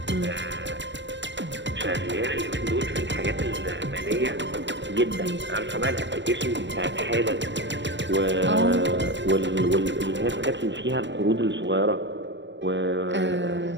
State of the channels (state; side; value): late; left; 0.53 ms